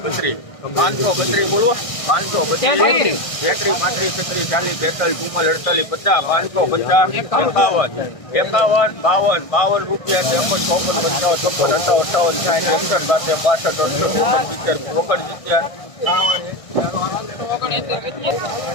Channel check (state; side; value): late; right; 1.6 ms